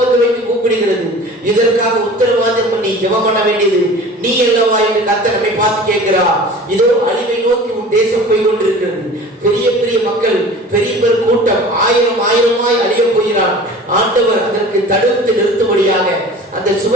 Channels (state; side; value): normal; both; correlation 0.41